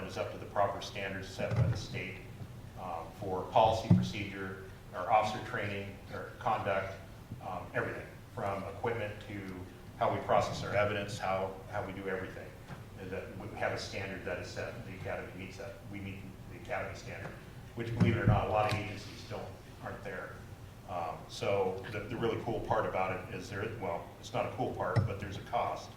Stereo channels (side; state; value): both; identical; correlation 1.00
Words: is up to the proper standards set by the state for policy, procedure, our officer training, our conduct, everything from equipment to how we process our evidence, how we do everything. And that we have a standard that is set, the academy meets that. We meet the academy standard, which, believe it or not, a lot of agencies aren't there. So the really cool part about it is well, it's not a cool part, but there's a cost.